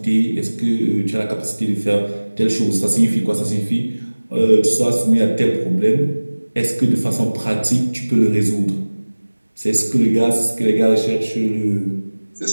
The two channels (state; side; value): inverted; both; correlation -1.00